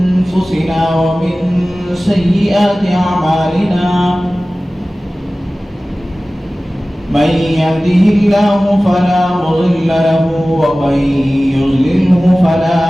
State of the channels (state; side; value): normal; both; correlation 0.97